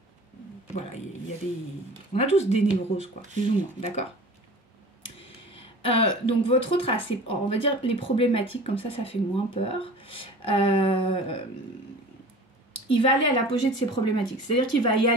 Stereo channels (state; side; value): normal; both; correlation 0.40